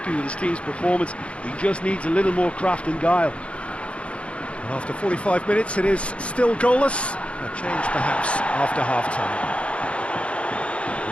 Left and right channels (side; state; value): right; late; 0.061 ms